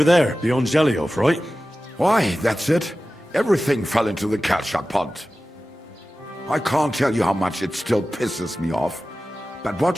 there, beyond Zhelyov, right? Why, that's it. Everything fell into the Kalchak pond. I can't tell you how much it still pisses me off, but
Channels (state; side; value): normal; both; correlation 0.95